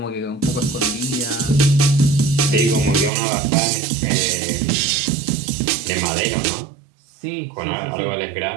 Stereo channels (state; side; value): drops out; left; at 3.1 s